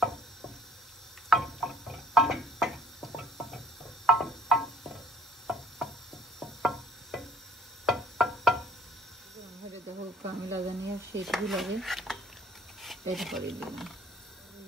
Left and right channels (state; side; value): normal; both; correlation 0.56